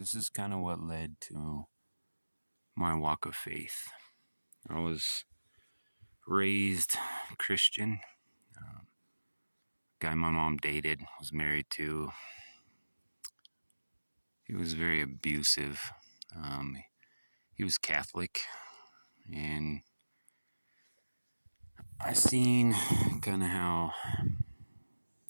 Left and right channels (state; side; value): inverted; both; correlation -1.00